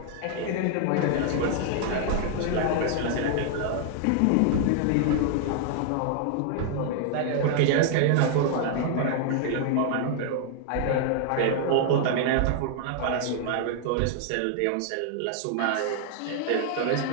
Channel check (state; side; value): different; both; correlation 0.00